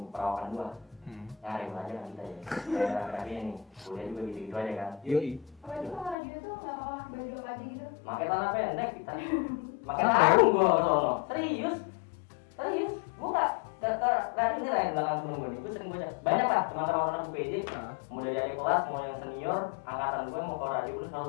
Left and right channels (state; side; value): drops out; right; at 6.2 s